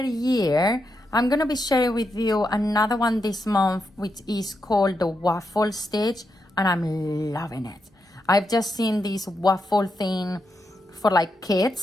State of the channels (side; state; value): both; normal; correlation 0.84